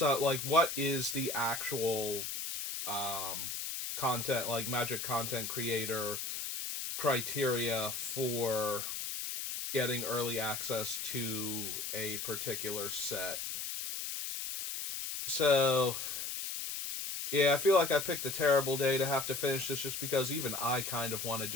what is the actual um content, like magic content creator criteria for getting early access to a particular set. So, yeah, I feel like I picked a terrible day to have to finish this just because even I kind of want to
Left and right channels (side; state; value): left; noise; hiss, 4 dB below the sound